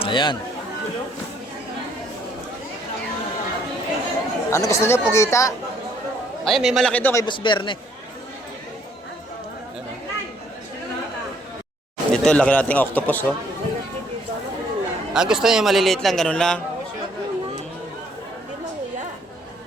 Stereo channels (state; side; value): normal; both; correlation 0.65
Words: Ayan. Ano gusto niyo, pugita? Ay, may malaki doon kay Boss Berne. Ayan, oh. Ito, laki nating octopus, oh. Gusto niyo maliliit lang, ganun lang.